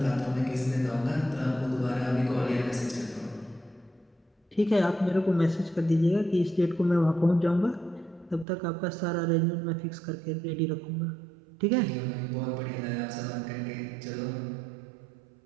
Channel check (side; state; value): left; drops out; at 8.5 s